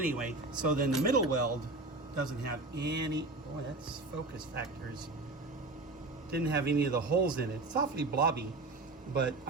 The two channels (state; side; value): quieter; left; 3.2 dB